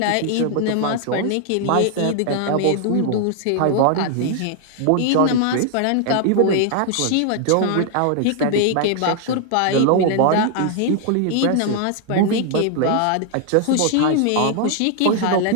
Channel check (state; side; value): different; both; correlation 0.00